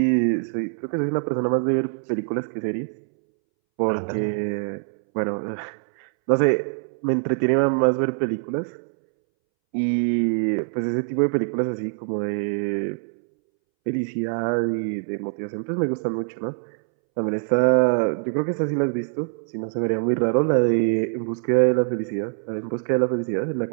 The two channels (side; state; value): left; silent; 63 dB below the other